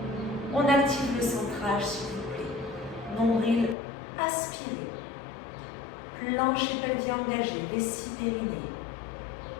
on active le centrage, s'il vous plaît. Nombril aspiré. Plancher pelvien engagé, vessie périnée.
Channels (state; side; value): drops out; right; at 3.8 s